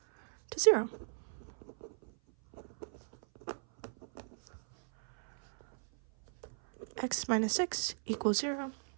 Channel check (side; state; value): left; silent; 54 dB below the other